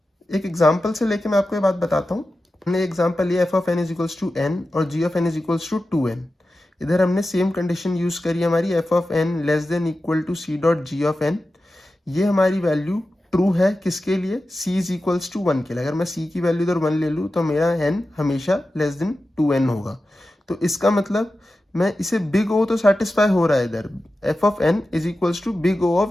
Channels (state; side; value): normal; both; correlation 0.93